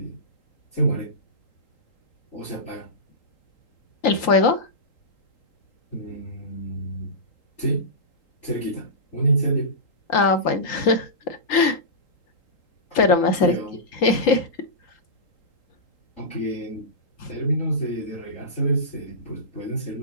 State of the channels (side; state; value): right; late; 3.8 ms